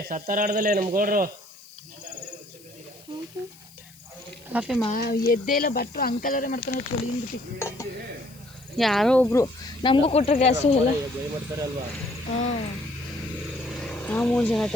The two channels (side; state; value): left; noise; hiss, 24 dB below the sound